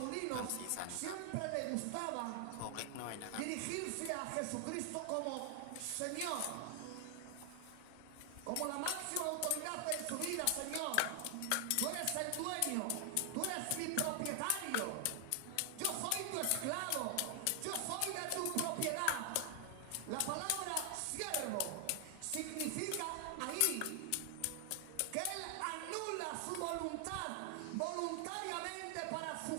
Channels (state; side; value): different; both; correlation 0.00